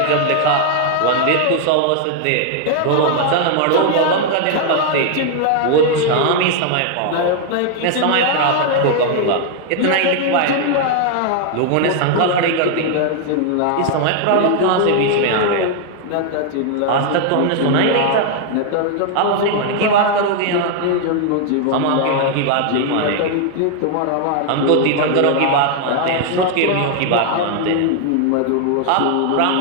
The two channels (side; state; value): both; different; correlation 0.00